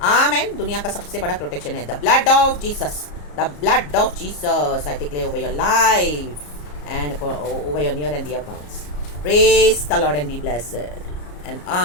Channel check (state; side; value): late; right; 34 ms